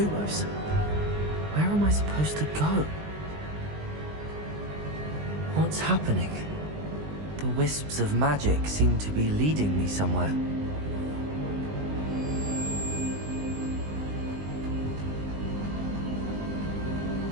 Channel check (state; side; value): late; left; 20 ms